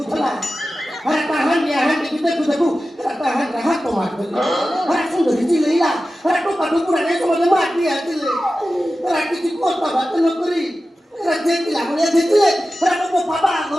अरे ताहन दिया हां देखू देखू ताहन रहा तो मार दे। अरे सुंदरी जी लेला अरे तो पाटू पूरा नहीं समझ मार दिया दिले। अरे किसी को तो बात न करी। अरे जेती ला बोले जेती अरे तो पापा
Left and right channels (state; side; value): normal; both; correlation 0.94